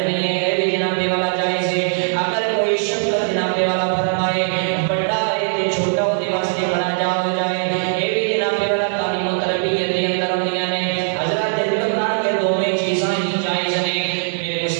ہے، بھی جناب والا جائز ہے۔ اگر کوئی شفقت جناب والا فرمائے بڑا ہے کہ چھوٹا اس کے واسطے کھڑا ہو جائے، یہ بھی جناب والا تعلیم و تربیت کے اندر ہوندیاں نے۔ حضرت اللہ کے دونوں چیزاں ہی جائز ہیں، میرے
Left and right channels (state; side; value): silent; left; 63 dB below the other